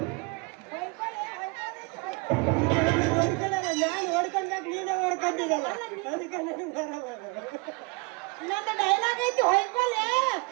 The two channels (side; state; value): left; quieter; 28.8 dB